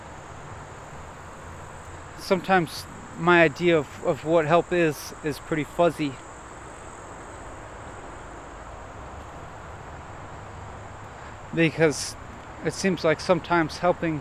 sometimes my idea of what help is pretty fuzzy. Because it seems like sometimes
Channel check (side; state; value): both; identical; correlation 1.00